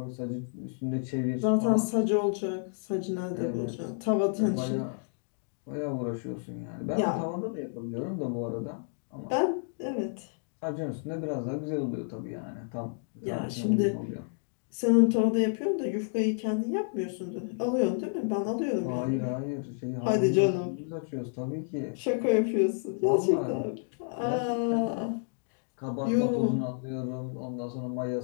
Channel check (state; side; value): silent; right; digital silence